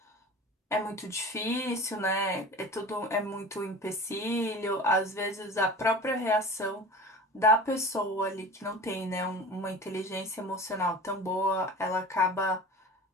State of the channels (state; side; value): normal; both; correlation 0.37